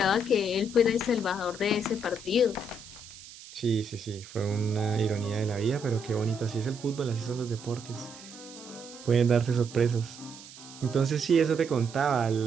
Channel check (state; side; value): noise; right; hiss, 17 dB below the sound